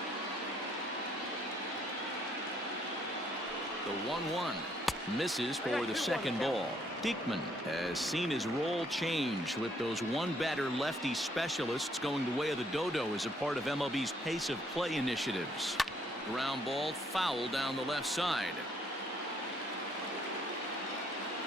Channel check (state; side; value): normal; both; correlation 0.68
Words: The 1-1 misses for the second ball. Diekman has seen his role change with those one-batter lefty specialists going the way of the dodo as a part of MLB's pace of play initiatives. Ground ball foul down the left side.